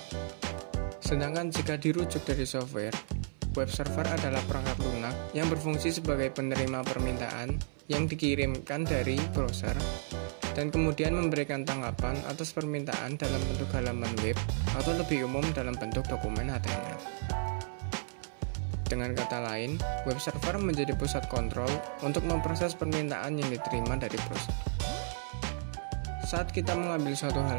Sedangkan jika dirujuk dari software, web server adalah perangkat lunak yang berfungsi sebagai penerima permintaan yang dikirimkan dari browser dan kemudian memberikan tanggapan atas permintaan dalam bentuk halaman web atau lebih umum dalam bentuk dokumen HTML. Dengan kata lain, web server menjadi pusat kontrol untuk memproses permintaan yang diterima dari browser. Saat kita mengambil suatu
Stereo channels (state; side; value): silent; left; 56 dB below the other